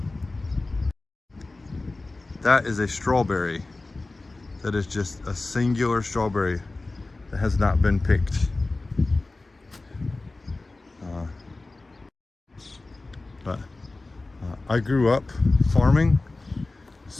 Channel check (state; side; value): quieter; right; 3.2 dB